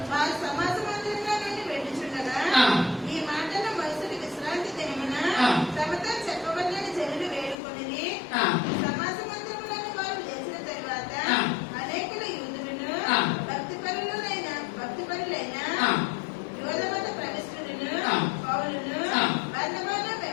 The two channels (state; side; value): drops out; right; at 7.6 s